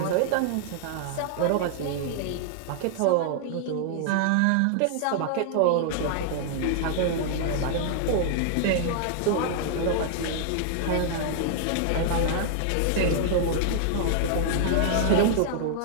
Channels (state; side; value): different; both; correlation -0.01